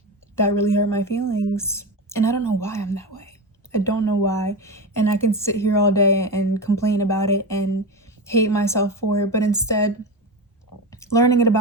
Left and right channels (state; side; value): normal; both; correlation 0.20